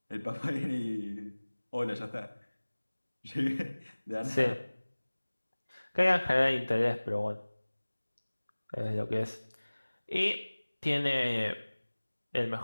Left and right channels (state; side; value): inverted; both; correlation -1.00